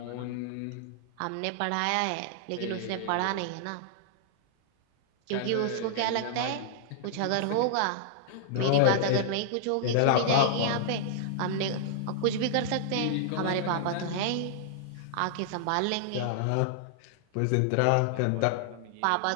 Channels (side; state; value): both; different; correlation -0.01